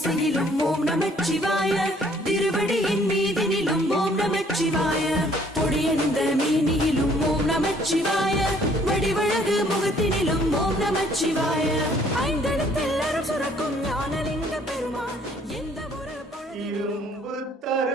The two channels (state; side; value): normal; both; correlation 0.61